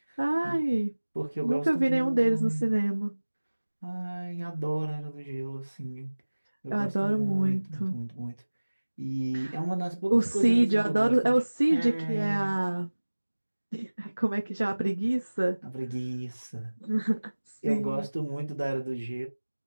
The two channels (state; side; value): inverted; both; correlation -1.00